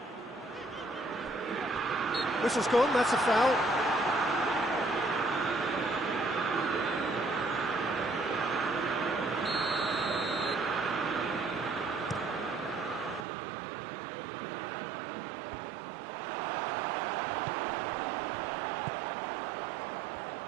Whistle's gone, that's a foul.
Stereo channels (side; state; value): left; drops out; at 13.2 s